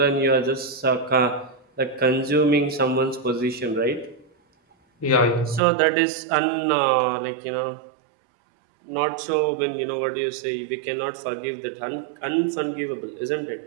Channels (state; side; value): drops out; left; at 5.6 s